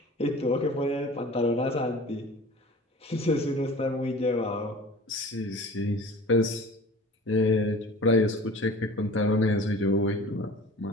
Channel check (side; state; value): both; normal; correlation 0.42